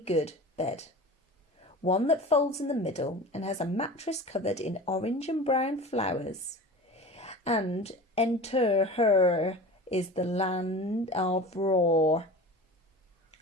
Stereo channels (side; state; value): both; normal; correlation 0.35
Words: bed. One that folds in the middle and has a mattress covered in orange and brown flowers. And enter her is the land of roar.